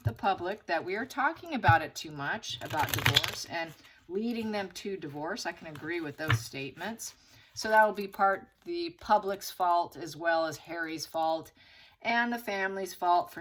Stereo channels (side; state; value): both; identical; correlation 1.00